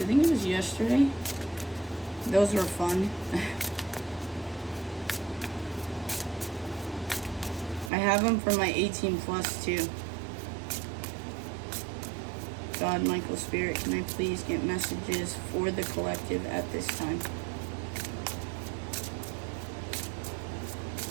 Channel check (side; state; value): left; drops out; at 7.9 s